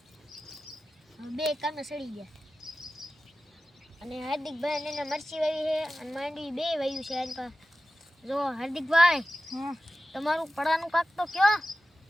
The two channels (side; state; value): both; normal; correlation 0.94